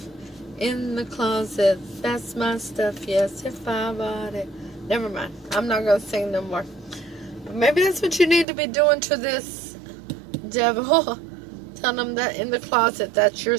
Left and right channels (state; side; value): drops out; left; at 8.5 s